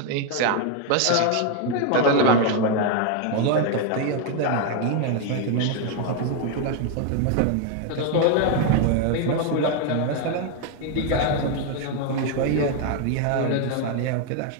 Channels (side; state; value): both; different; correlation 0.00